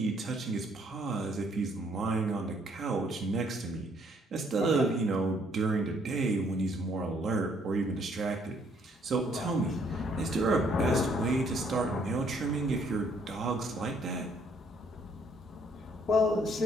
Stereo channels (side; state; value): both; normal; correlation 0.66